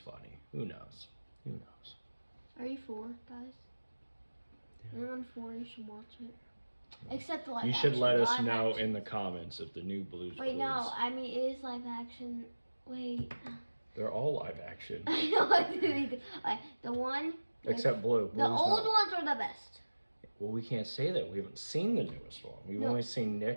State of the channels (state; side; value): inverted; both; correlation -1.00